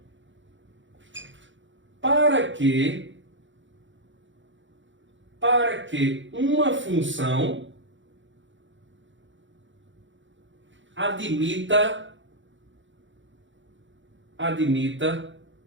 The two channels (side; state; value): left; late; 0.55 ms